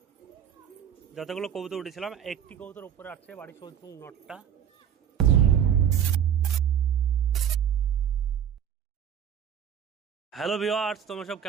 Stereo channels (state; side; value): quieter; left; 9.0 dB